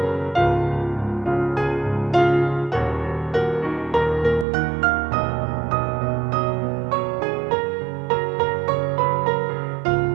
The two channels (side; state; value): left; drops out; at 4.5 s